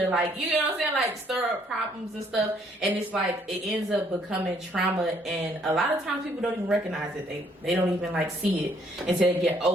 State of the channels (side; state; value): both; normal; correlation 0.66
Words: like, you know what I'm saying, like stir up problems and stuff, and it's like it ends up becoming trauma, and a lot of times people don't even recognize it. They don't even like see it until they get